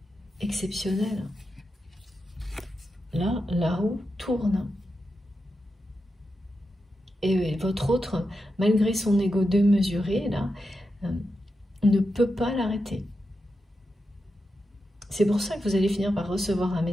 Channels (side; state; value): both; normal; correlation 0.88